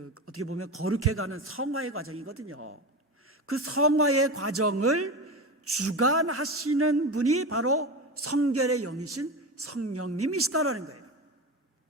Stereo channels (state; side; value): normal; both; correlation 0.24